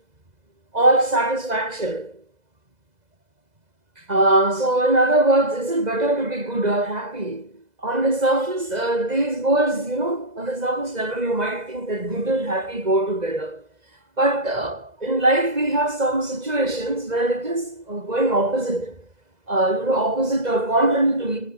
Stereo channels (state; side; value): late; left; 2.0 ms